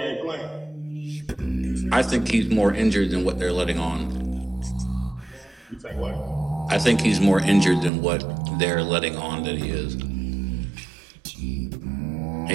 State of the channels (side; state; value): left; drops out; at 7.9 s